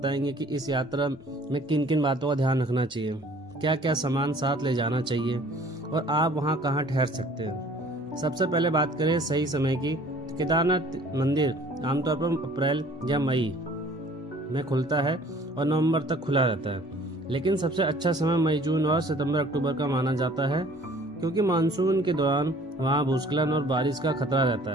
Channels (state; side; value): normal; both; correlation 0.52